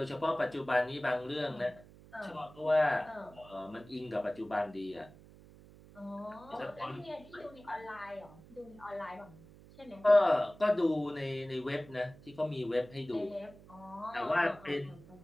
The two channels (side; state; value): right; noise; hum, 21 dB below the sound